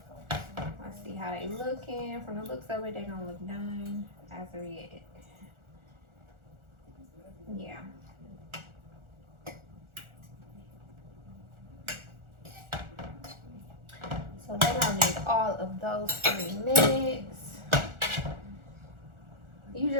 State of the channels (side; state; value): left; late; 1.4 ms